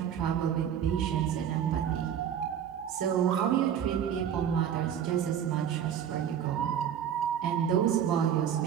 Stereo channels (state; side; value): quieter; left; 9.1 dB